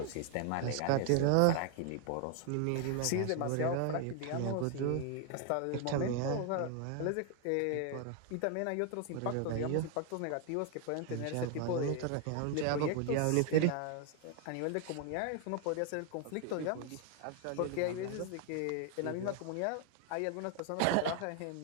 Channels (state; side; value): different; both; correlation 0.00